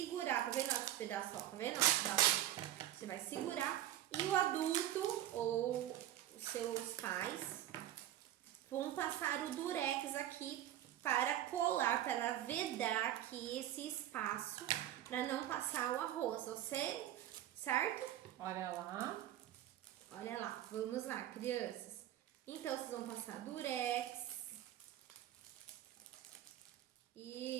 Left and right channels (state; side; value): quieter; left; 12.5 dB